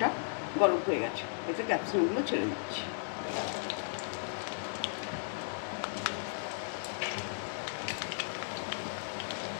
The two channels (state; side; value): silent; right; digital silence